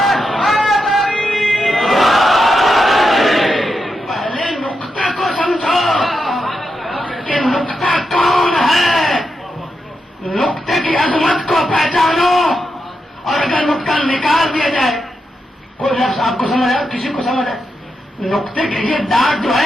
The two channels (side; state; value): both; normal; correlation 0.85